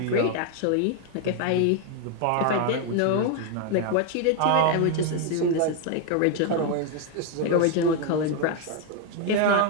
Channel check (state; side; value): different; both; correlation 0.01